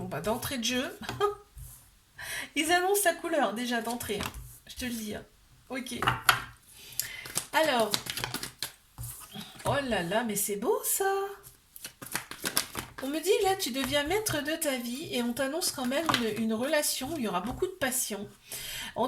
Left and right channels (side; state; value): both; identical; correlation 1.00